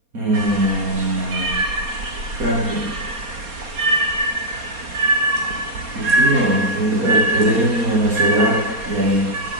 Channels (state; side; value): late; left; 4.3 ms